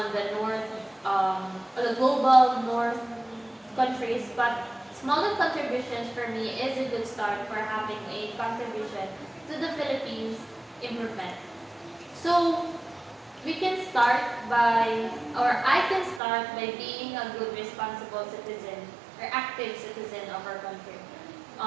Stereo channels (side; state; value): left; drops out; at 16.2 s